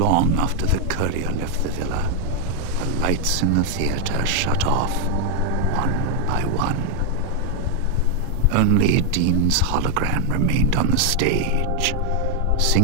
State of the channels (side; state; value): both; different; correlation 0.00